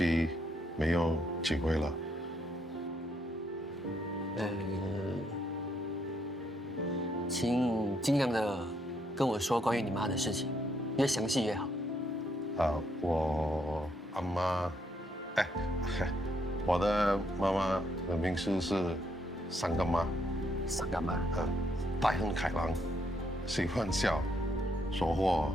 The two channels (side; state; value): both; normal; correlation 0.74